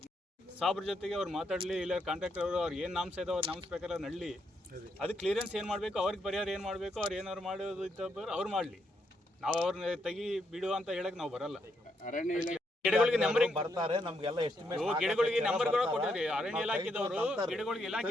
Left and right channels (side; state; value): both; normal; correlation 0.77